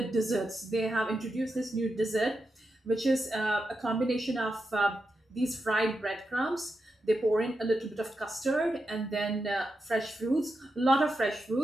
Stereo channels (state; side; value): normal; both; correlation 0.87